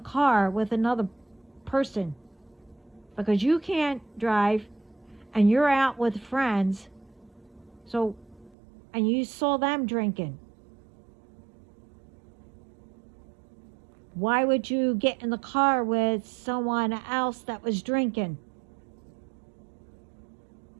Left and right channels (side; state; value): left; drops out; at 8.6 s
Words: with another person because you can't drive and you're out with friends, and you saw them drinking. Why would you get in the car with someone else that was drinking?